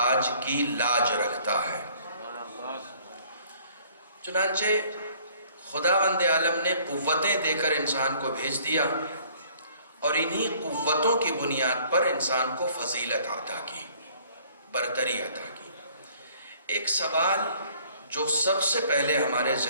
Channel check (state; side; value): inverted; both; correlation -0.57